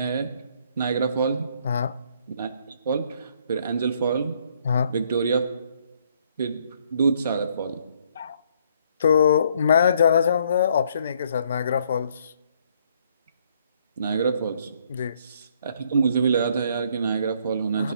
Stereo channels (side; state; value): both; inverted; correlation -0.67